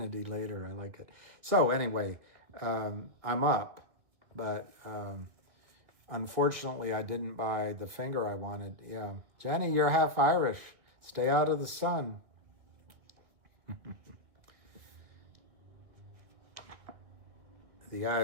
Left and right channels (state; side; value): late; left; 2.1 ms